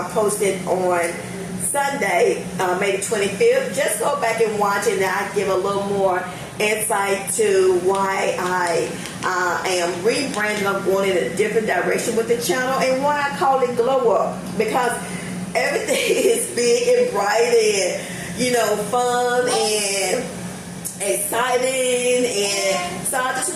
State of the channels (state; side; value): identical; both; correlation 1.00